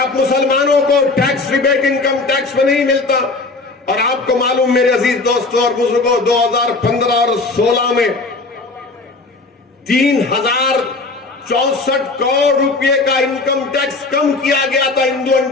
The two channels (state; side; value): quieter; right; 3.6 dB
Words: मुसलमानों को टैक्स रिबेट इनकम टैक्स में नहीं मिलता? और आपको मालूम मेरे अजीज दोस्तों और बुजुर्गों, 2015 और 16 में 3064 करोड़ रुपए का इनकम टैक्स कम किया गया था हिंदू